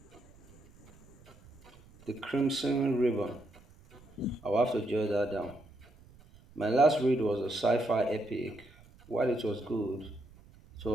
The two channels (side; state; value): right; noise; rumble, 25 dB below the sound